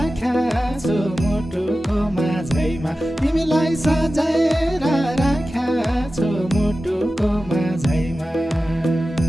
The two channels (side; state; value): both; normal; correlation 0.94